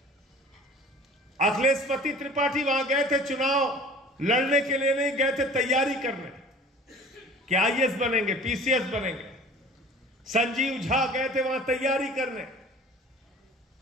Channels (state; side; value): normal; both; correlation 0.45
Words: अखिलेश त्रिपाठी वहां गए थे चुनाव लड़ने के लिए, नहीं गए थे तैयारी करने कि आईएएस बनेंगे, पीसीएस बनेंगे। संजीव झा गए थे वहां तैयारी करने।